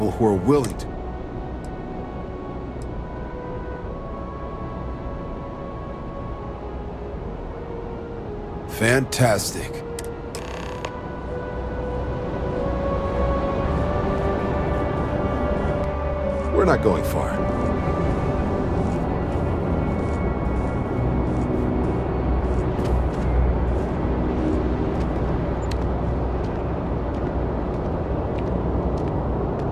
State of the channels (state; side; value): identical; both; correlation 1.00